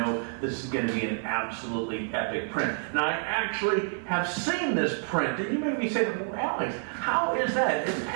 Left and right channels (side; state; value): left; silent; 59 dB below the other